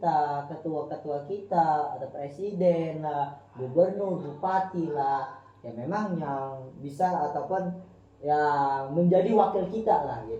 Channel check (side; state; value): both; identical; correlation 1.00